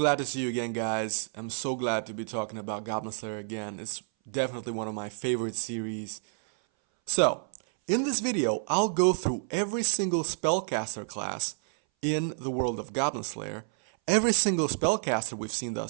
to see you again, guys. I'm so glad to be talking about Goblin Slayer again. It's definitely one of my favorite series. So, in this video, I'll go through every single spellcaster class in the world of Goblin Slayer, every single spellcaster we've seen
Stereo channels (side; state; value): left; silent; 58 dB below the other